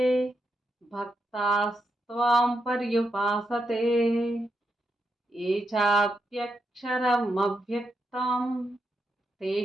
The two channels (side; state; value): both; normal; correlation 0.84